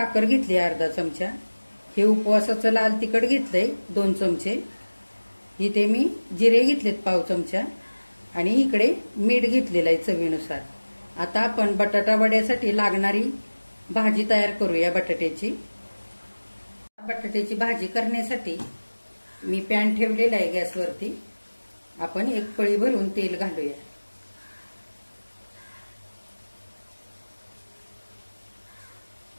घेतली अर्धा चमचा. हे उपवासाचं लाल तिखट घेतलंय 2 चमचे. इथे मी जिरे घेतलेत पाव चमचा आणि इकडे मीठ घेतलेलं आहे चवीनुसार. आता आपण बटाटा वड्यासाठी लागणारी भाजी तयार करूया बटाट्याची. बटाट्याची भाजी करण्यासाठी मी पॅन ठेवलेला आहे गॅसवरती. आपण 1 पळी भरून तेल घालूया.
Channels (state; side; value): inverted; both; correlation -1.00